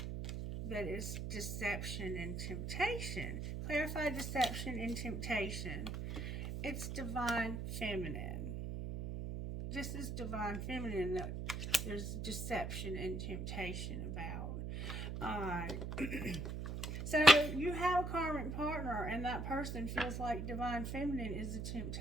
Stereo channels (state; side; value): noise; right; hum, 4 dB below the sound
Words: That is deception and temptation. Clarify deception and temptation. It's Divine Feminine. This is Divine Feminine that there's deception and temptation about. Alright. So you have a karmic partner, and that person feels like Divine Feminine is a